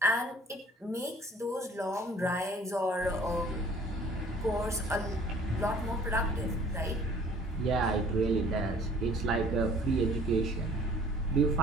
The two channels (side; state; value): both; normal; correlation 0.52